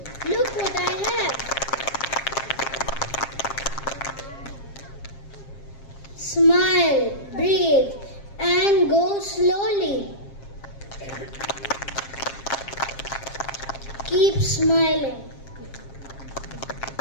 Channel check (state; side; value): late; right; 7.4 ms